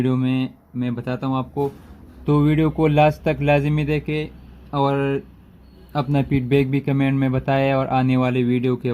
में मैं बताता हूँ आपको। तो वीडियो को लास्ट तक लाजमी देखें और अपना फीडबैक भी कमेंट में बताएं और आने वाले वीडियो के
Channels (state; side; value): identical; both; correlation 1.00